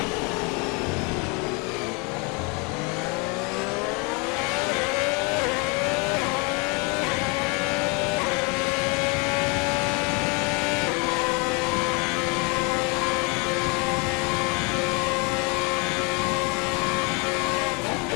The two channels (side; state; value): right; quieter; 31.0 dB